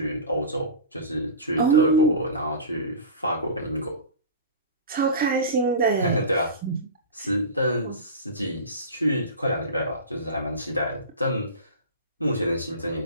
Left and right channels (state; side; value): inverted; both; correlation -0.31